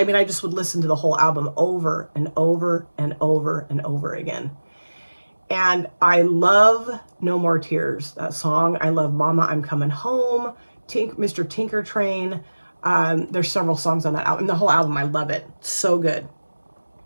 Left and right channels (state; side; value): inverted; both; correlation -1.00